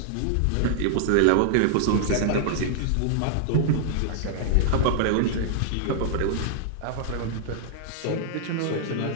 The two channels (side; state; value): both; different; correlation -0.01